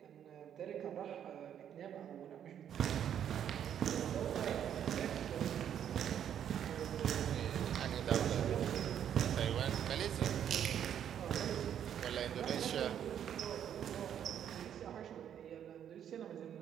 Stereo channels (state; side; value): quieter; left; 9.5 dB